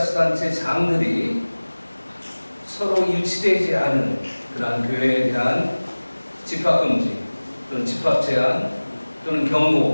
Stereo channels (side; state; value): both; inverted; correlation -1.00